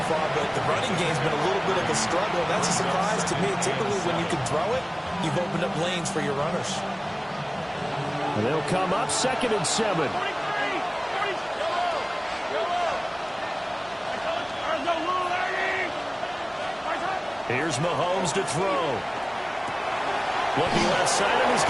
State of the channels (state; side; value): identical; both; correlation 1.00